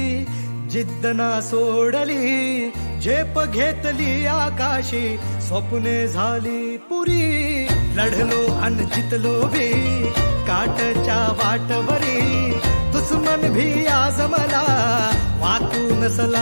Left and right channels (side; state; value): both; inverted; correlation -1.00